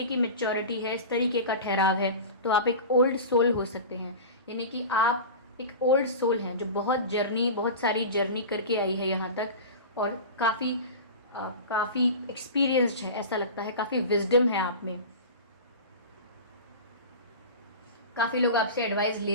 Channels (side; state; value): both; inverted; correlation -0.31